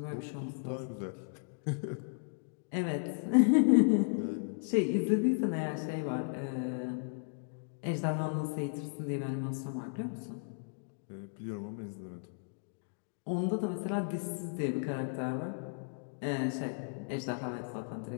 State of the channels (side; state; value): right; silent; digital silence